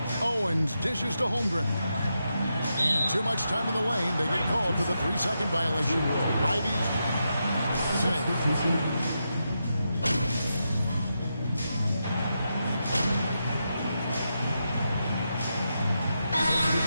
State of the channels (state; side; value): inverted; both; correlation -0.86